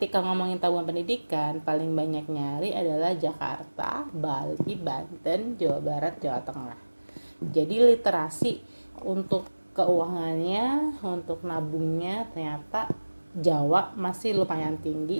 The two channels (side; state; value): both; inverted; correlation -1.00